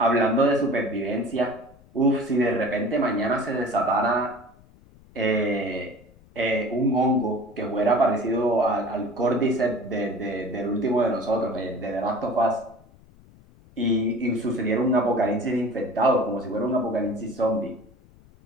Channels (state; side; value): noise; left; rumble, 26 dB below the sound